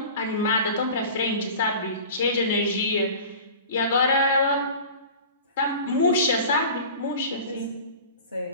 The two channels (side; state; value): both; inverted; correlation -0.38